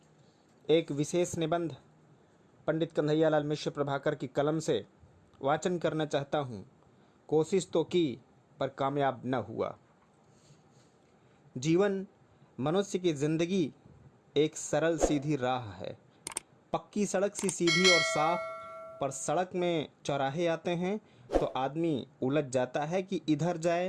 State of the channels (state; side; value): identical; both; correlation 1.00